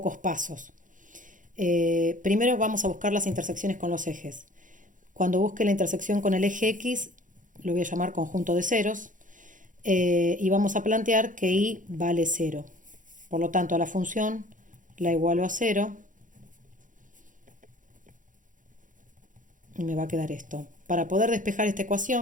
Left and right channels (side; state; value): left; late; 0.38 ms